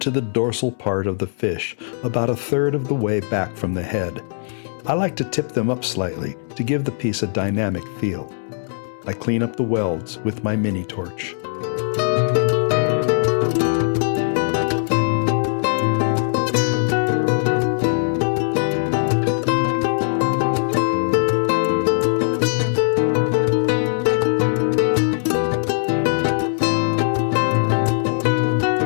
to the dorsal part of the fish, about 1/3 of the way back from the head. I like to tip them up slightly to give the piece a dynamic feel. I clean up the welds with my mini torch.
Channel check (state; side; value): silent; right; 65 dB below the other